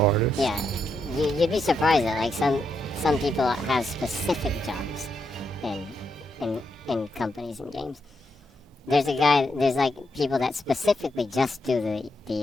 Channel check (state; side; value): normal; both; correlation 0.81